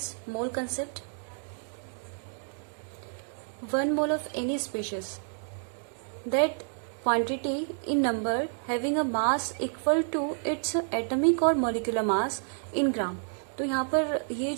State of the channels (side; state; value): left; silent; digital silence